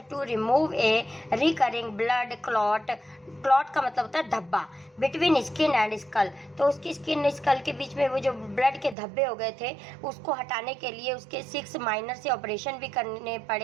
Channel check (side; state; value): left; drops out; at 9.0 s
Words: to remove a recurring blood clot. Clot का मतलब होता है धब्बा, बिटवीन स्किन एंड स्कल। तो उसकी स्किन स्कल के बीच में वो जो ब्लड के धब्बे हो गए थे उसको हटाने के लिए उसके 6 माइनर से ऑपरेशन भी करने